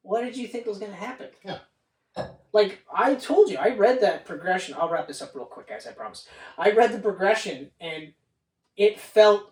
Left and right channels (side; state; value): both; identical; correlation 1.00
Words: what did you think was going to happen? Yeah. Like, I told you, I read that progression. I'll wrap this up real quick, guys, I promise. I read the progression, and it